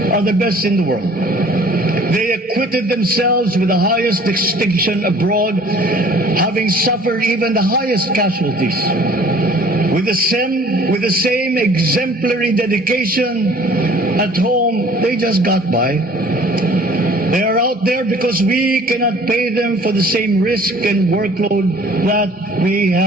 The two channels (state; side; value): normal; both; correlation 0.51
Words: are the best in the world. They acquitted themselves with the highest distinction abroad, having suffered even the highest casualties. With the same exemplary dedication at home, they just got by. They are out there because we cannot pay them for the same risk and workload that we